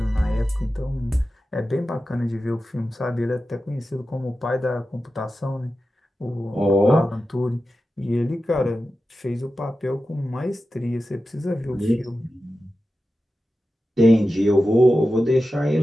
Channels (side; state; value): both; normal; correlation 0.93